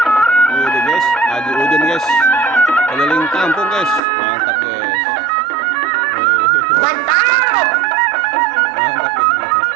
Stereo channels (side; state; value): left; drops out; at 4.0 s